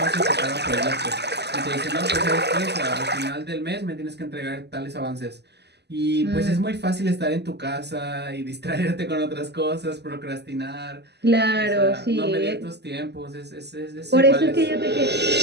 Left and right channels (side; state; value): left; late; 0.49 ms